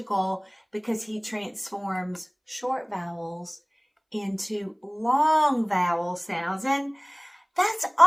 because he transforms short vowels into long vowel sounds. And that's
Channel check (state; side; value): identical; both; correlation 1.00